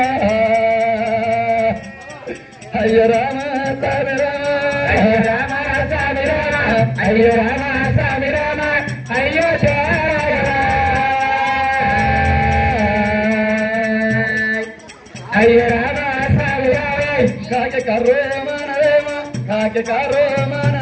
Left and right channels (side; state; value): both; identical; correlation 1.00